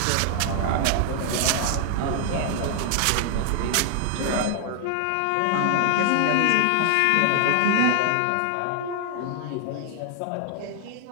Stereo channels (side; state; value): both; different; correlation 0.00